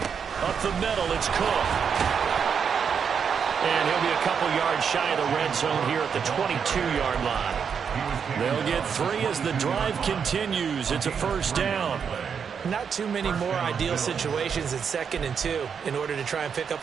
Up the middle, it's Cook. And he'll be a couple yards shy of the red zone here at the 22-yard line. They'll get 3 as the drive continues. It's a first down. Not too many more ideal situations in 2nd and 2 in order to try and pick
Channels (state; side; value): quieter; left; 6.8 dB